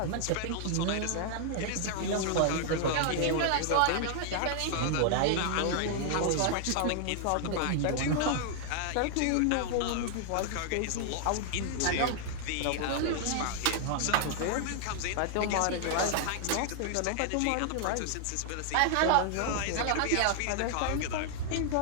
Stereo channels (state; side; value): different; both; correlation 0.00